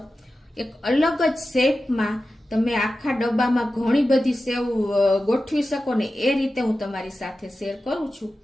એક અલગ જ શેપમાં તમે આખા ડબ્બામાં ઘણી બધી સેવ ગોઠવી શકો ને એ રીતે હું તમારી સાથે શેર કરું છું।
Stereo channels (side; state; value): both; normal; correlation 0.93